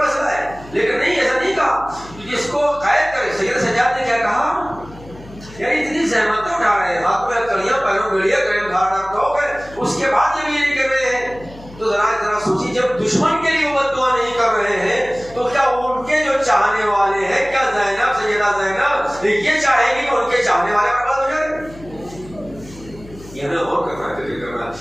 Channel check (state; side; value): noise; left; hum, 19 dB below the sound